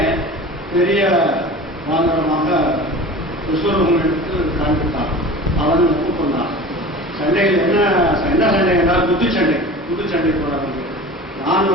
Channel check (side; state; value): both; normal; correlation 0.37